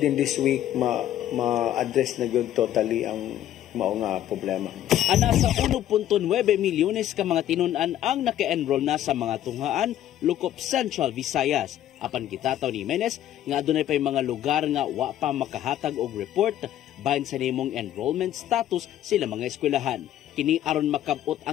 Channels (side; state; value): right; quieter; 12.0 dB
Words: this week ma-address na gyud totally ang mao nga problema. Ana sa 1.9 milyones ka mga tinun-an ang naka-enroll na sa mga tunghaan Lukop Central Visayas. Apan gitataw ni Jimenez nga adunay pay mga lugar nga wa pa makahatag og report bahin sa nimong enrollment status sila mga eskwelahan. Kini aron makabot